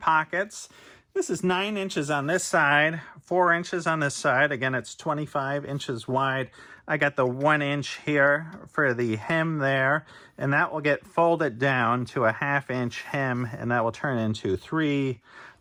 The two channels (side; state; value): both; identical; correlation 1.00